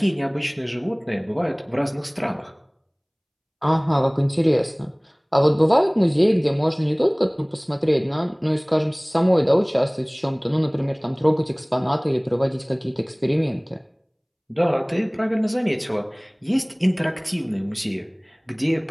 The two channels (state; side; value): identical; both; correlation 1.00